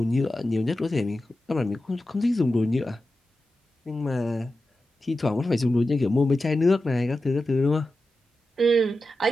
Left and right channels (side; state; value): both; normal; correlation 0.92